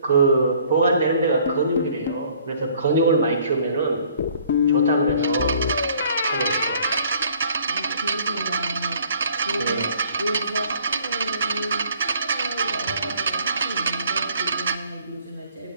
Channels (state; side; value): inverted; both; correlation -0.58